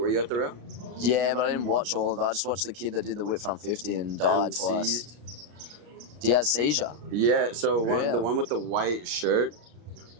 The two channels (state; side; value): late; left; 33 ms